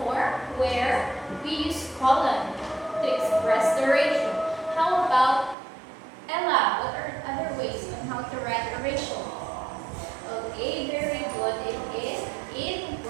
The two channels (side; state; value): left; drops out; at 5.6 s